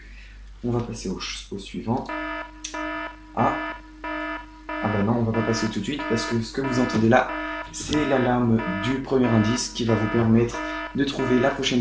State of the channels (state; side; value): identical; both; correlation 1.00